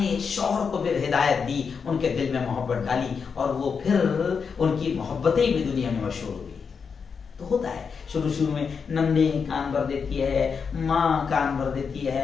پھر ہدایت دی, ان کے دل میں محبت ڈالی, اور وہ پھر ان کی محبتیں بھی دنیا میں مشہور ہوئی. تو ہوتا ہے شروع میں نندے کان بھر دیتی ہے, ماں کان بھر دیتی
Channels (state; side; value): quieter; right; 5.9 dB